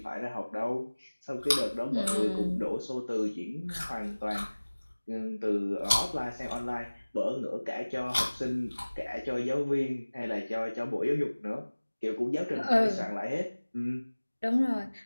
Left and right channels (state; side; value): inverted; both; correlation -1.00